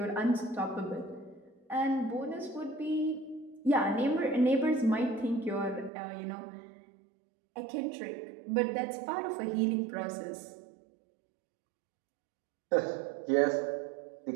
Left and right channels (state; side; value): drops out; left; at 5.9 s